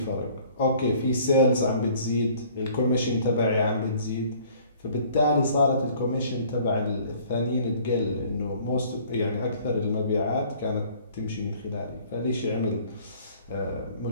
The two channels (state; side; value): inverted; both; correlation -0.54